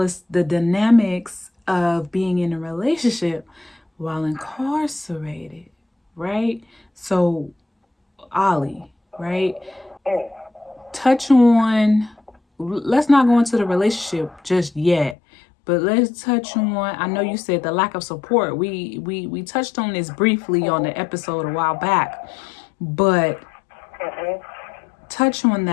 the dynamics of being in a relationship while incarcerated, right? So, Ali, right? Touch on, let's not go into the relationship just yet, but let's touch on, I know you said the lack of support. We touched on this briefly on the episode a while back, but touch on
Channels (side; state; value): right; drops out; at 15.2 s